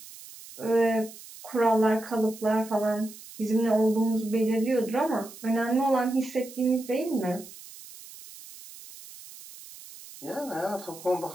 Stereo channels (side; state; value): right; noise; hiss, 17 dB below the sound